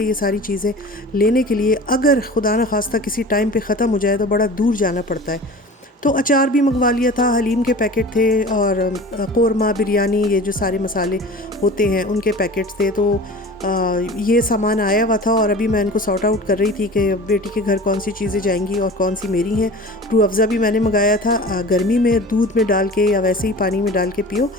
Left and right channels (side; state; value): both; normal; correlation 0.38